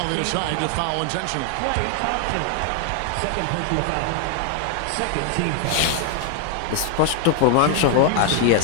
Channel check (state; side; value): different; both; correlation 0.00